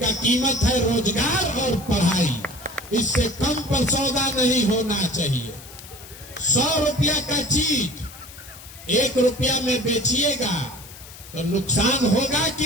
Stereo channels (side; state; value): left; noise; hiss, 17 dB below the sound